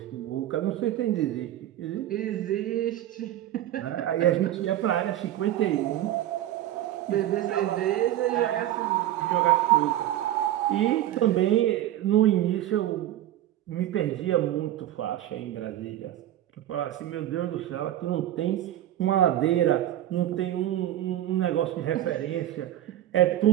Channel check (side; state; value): left; quieter; 13.0 dB